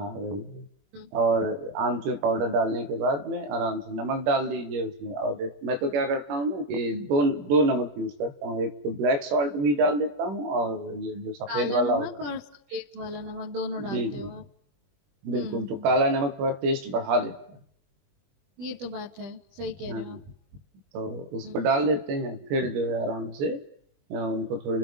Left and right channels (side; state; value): left; late; 21 ms